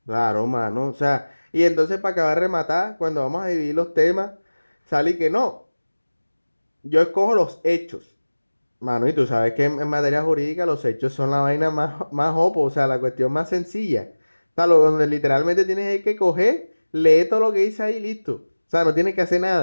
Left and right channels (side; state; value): both; inverted; correlation -1.00